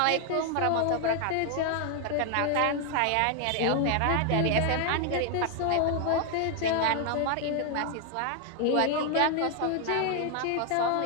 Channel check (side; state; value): both; different; correlation 0.01